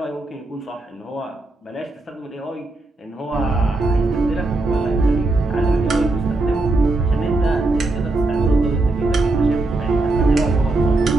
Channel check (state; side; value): quieter; left; 3.0 dB